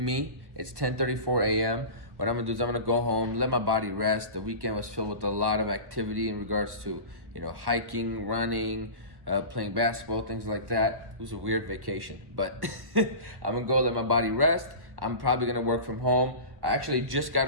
me. It's 10:34 a.m. What I'm gonna do is I'm gonna go home, let my body rest. The weekend was filled with a lot of activity in regards to, hiking, running, playing basketball, things like that. It was a weird vacation, but I'm gonna go let my body rest. I'm probably gonna work from home. I actually just got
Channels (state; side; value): late; left; 1.1 ms